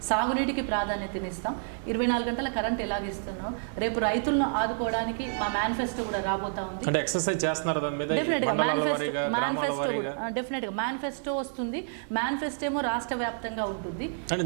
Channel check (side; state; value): left; silent; 59 dB below the other